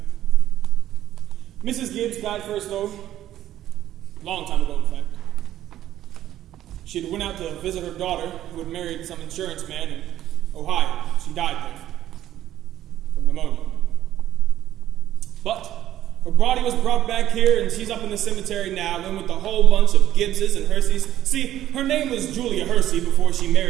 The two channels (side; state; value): left; quieter; 12.6 dB